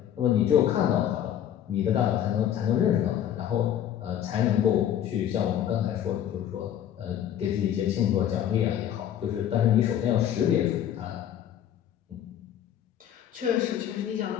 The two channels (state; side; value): quieter; right; 10.4 dB